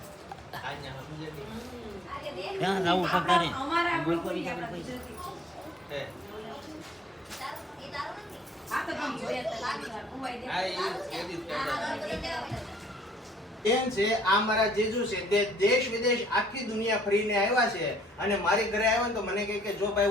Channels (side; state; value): both; normal; correlation 0.62